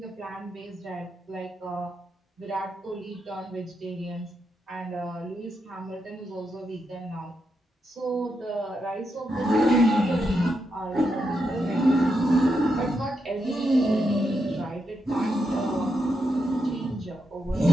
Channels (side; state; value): both; normal; correlation 0.84